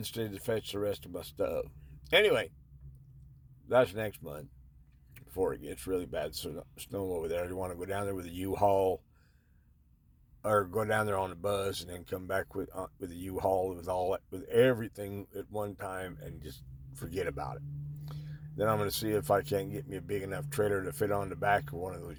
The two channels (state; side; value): identical; both; correlation 1.00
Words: to fetch the rest of my stuff. Anyway, that's next month before it gets really bad snow over there. I want to go down there with a U-Haul or go down there on the bus and then come back with a U-Haul with everything at one time and just forget about it. Then I'm going to see if I can't get me a big enough trailer to fit on the back of one of